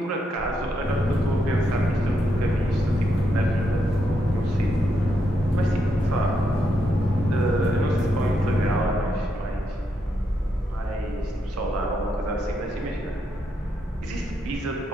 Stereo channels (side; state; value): both; normal; correlation 0.81